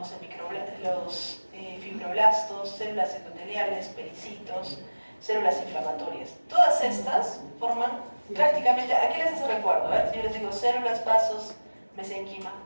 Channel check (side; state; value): both; inverted; correlation -1.00